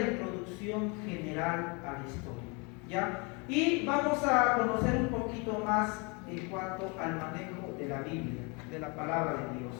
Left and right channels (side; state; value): right; quieter; 30.9 dB